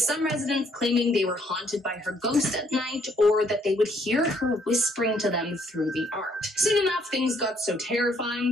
residents claiming they were haunted by her ghost at night, or that they would hear her whispering to them through the art. Soon enough, things got so terrifying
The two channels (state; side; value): normal; both; correlation 0.67